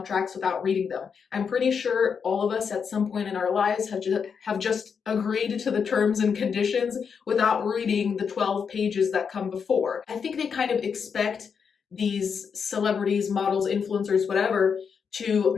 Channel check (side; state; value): right; quieter; 6.4 dB